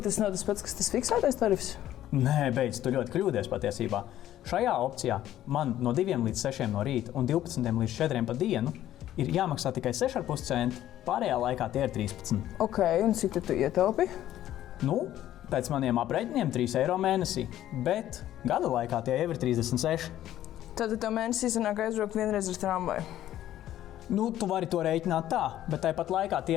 tas nav tas pats, kas tas fiksētais tarifs? Nē, beidz, tu ļoti kļūdies patiesībā. Šajā opcijā man no 2 līdz 6 no rīta un 12 līdz 4 pa dienu ir jāmaksā tikai 6,5 centi, pārējā laikā tie ir 13. Ok, un cik tu ietaupi? Nu, pēc maniem aprēķiniem 3 eiro mēnesī, bet gada laikā tie jau ir 36. Tad tev mēnesī sanāk aizbraukt vienreiz ar tramvaju. Nu, tu vari to rēķināt tā, bet tāpat laikā tie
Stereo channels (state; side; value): quieter; right; 12.7 dB